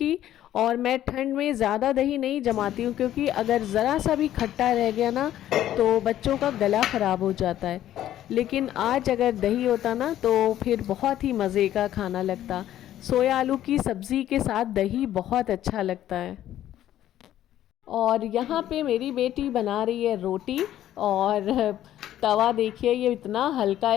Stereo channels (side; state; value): right; quieter; 12.3 dB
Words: और मैं ठंड में ज़्यादा दही नहीं जमाती हूँ, क्योंकि अगर ज़रा सा भी खट्टा रह गया ना तो बच्चों का गला ख़राब हो जाता है। लेकिन आज अगर दही होता ना तो फिर बहुत ही मज़े का खाना लगता। सोया आलू की सब्ज़ी के साथ दही बहुत अच्छा लगता है। और यहाँ पे मेरी बेटी बना रही है रोटी, और तवा देखिए ये इतना हल्का